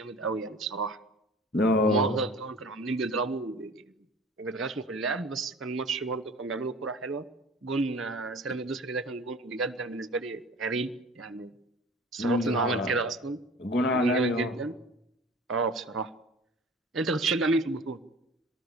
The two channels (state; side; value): normal; both; correlation 0.43